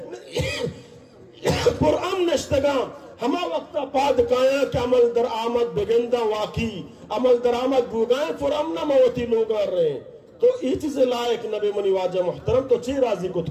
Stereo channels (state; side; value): identical; both; correlation 1.00